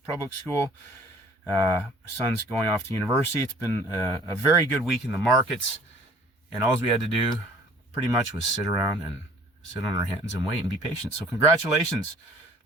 public school. Son's going off to university. It's been a very good week in the markets. And all we had to do pretty much was sit around and sit on our hands and wait and be patient. So congratulations.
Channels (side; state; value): both; normal; correlation 0.53